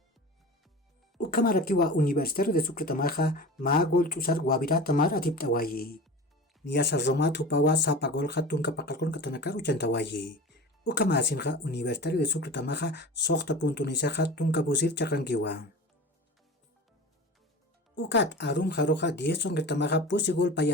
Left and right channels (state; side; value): normal; both; correlation 0.33